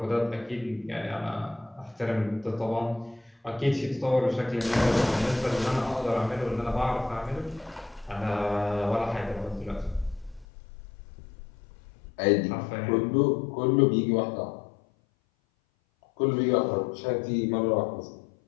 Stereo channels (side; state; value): right; drops out; at 10.5 s